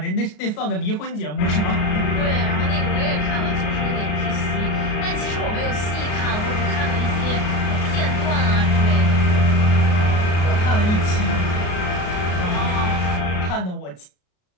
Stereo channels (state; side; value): late; right; 33 ms